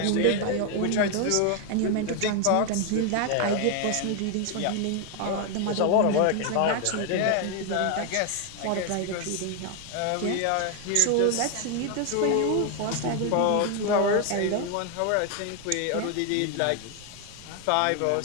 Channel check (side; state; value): both; different; correlation 0.01